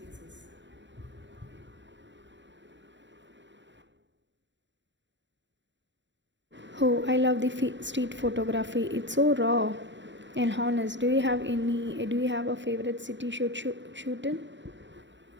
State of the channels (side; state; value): left; late; 0.53 ms